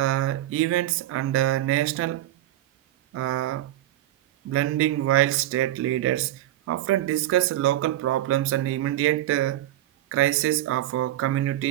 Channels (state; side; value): quieter; left; 13.9 dB